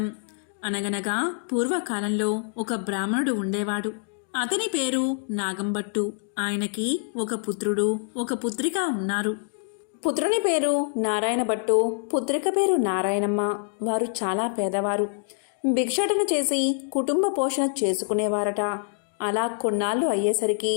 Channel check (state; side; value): silent; right; 58 dB below the other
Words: అనగనగా పూర్వకాలంలో ఒక బ్రాహ్మణుడు ఉండేవాడు. అతని పేరు నాగంభట్టు. ఆయనకి ఒక పుత్రుడు ఒక పుత్రిక ఉన్నారు. పుత్రుని పేరు నారాయణ భట్టు, పుత్రిక పేరు నారాయణమ్మ. వారు చాలా పేదవారు. భిక్షాటన చేసి కుటుంబ పోషణ చేసుకునేవారట. అలా కొన్నాళ్ళు అయ్యేసరికి